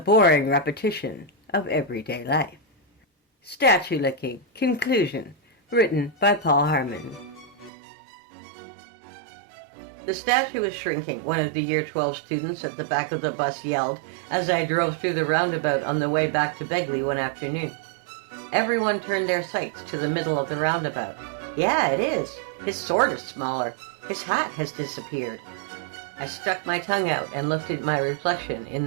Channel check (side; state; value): left; drops out; at 7.7 s